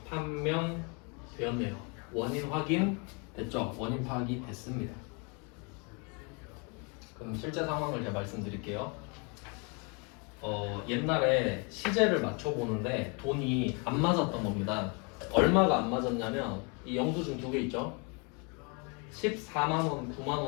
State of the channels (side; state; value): right; quieter; 33.4 dB